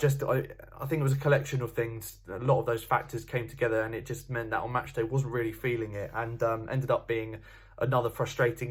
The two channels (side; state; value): both; identical; correlation 1.00